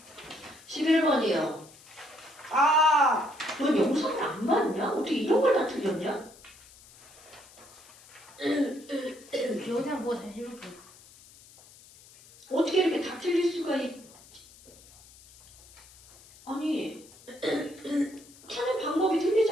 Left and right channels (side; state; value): left; noise; hiss, 23 dB below the sound